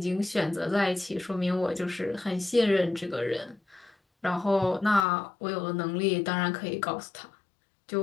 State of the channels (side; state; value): right; drops out; at 5.1 s